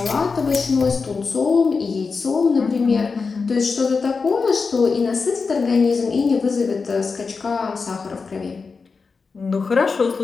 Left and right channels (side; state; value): right; quieter; 4.7 dB